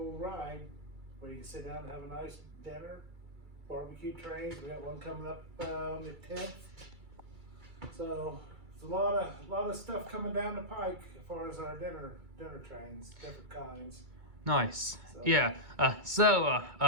ride where you can sit down and have a nice dinner. Barbecue trains, we got one coming up on the 10th. So There's a lot of stuff coming down the pike as far as our dinner trains, different kinds. Nice. So. Yeah.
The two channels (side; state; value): left; late; 2.3 ms